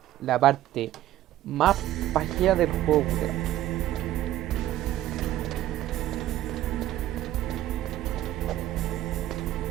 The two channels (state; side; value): quieter; left; 13.5 dB